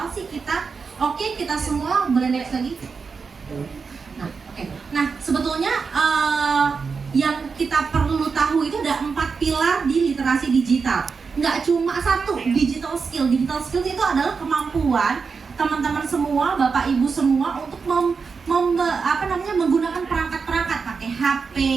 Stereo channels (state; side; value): quieter; left; 5.2 dB